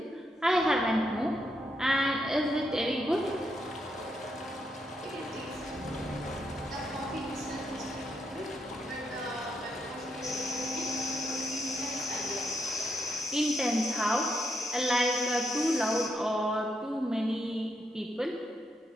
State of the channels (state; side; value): normal; both; correlation 0.80